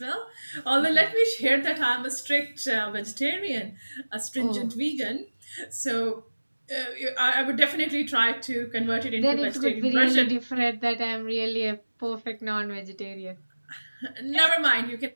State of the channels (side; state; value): both; inverted; correlation -1.00